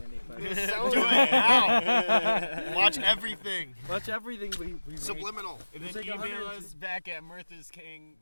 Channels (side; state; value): both; inverted; correlation -1.00